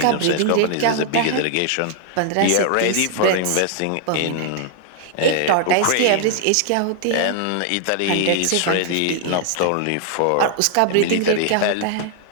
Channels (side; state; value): both; different; correlation 0.00